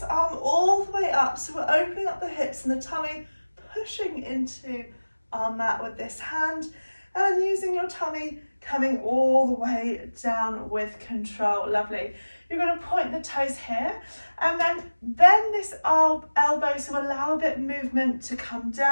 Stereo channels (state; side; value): inverted; both; correlation -1.00